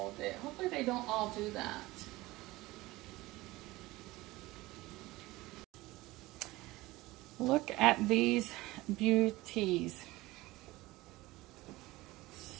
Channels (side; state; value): left; quieter; 19.5 dB